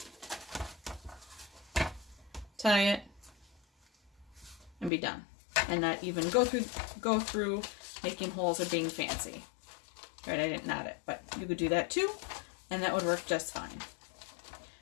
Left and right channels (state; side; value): drops out; right; at 4.9 s